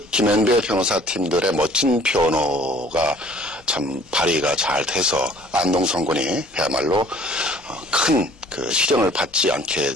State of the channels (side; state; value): both; normal; correlation 0.53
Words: 김현배 변호사팀들의 멋진 변호가 참 발휘가 잘 돼서 안동성 군이 그야말로 큰 그 실형을 받지 않게